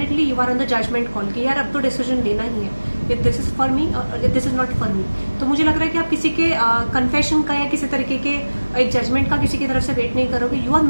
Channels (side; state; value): both; inverted; correlation -1.00